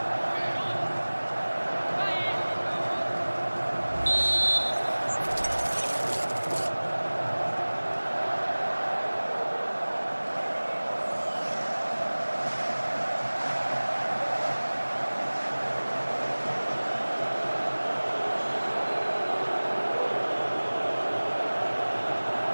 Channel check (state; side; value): inverted; both; correlation -1.00